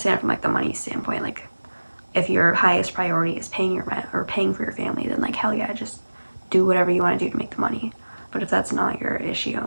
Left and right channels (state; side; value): inverted; both; correlation -1.00